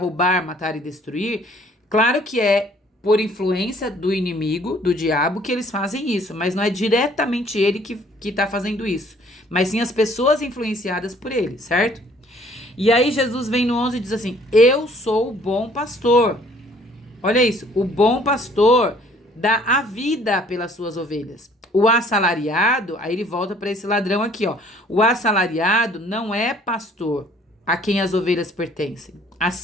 matar e destruir, claro que é por influência do inimigo, do diabo, que eles fazem isso, mas não é diretamente ele que tá fazendo isso, mas sim as pessoas influenciadas por ele, certo? E aí Jesus vem no 11 e diz assim, eu sou o bom pastor. Olha isso, o bom pastor dá a vida pelas suas ovelhas. O assalariado, aí ele volta para esse ladrão aqui, ó. O assalariado não é pastor a quem as ovelhas pertencem.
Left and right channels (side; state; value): both; normal; correlation 0.58